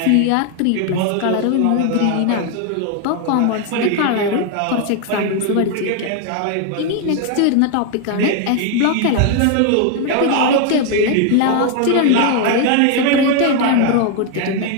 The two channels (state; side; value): different; both; correlation 0.00